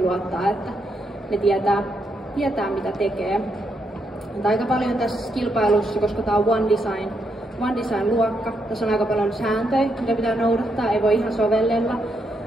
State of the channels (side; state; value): both; normal; correlation 0.79